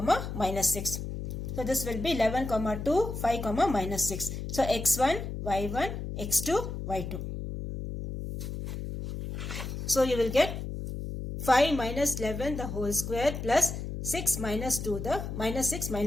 minus 6. So this will be 11, 2, 5, minus 6. So x1, y1, x2, y2. So you will get 5 minus 11 the whole square plus 6 minus 2 the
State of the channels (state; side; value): noise; left; hum, 6 dB below the sound